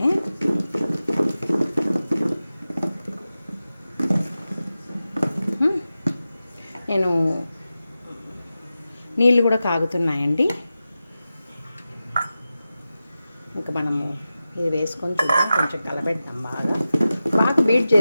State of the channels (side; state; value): both; inverted; correlation -0.94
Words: నేను నీళ్ళు కూడా కాగుతున్నాయండి. ఇంకా మనము ఇది వేసుకొని చూద్దాం, కొంచెం కలబెడతాం. బాగా బీట్